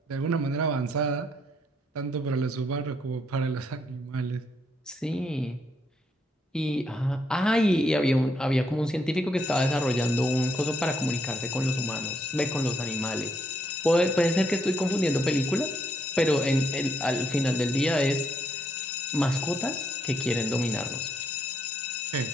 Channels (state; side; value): normal; both; correlation 0.74